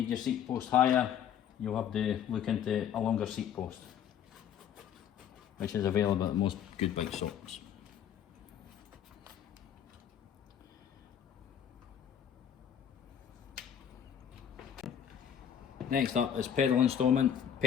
your seat post higher, you'll have to look into a longer seat post, which is available at most good bike shops. Next up is pedal installment.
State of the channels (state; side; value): quieter; right; 9.1 dB